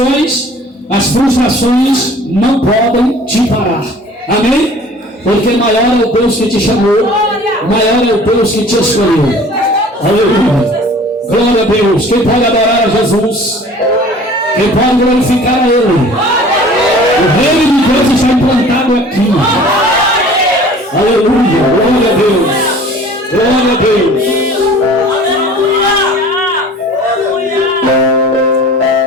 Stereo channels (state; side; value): normal; both; correlation 0.47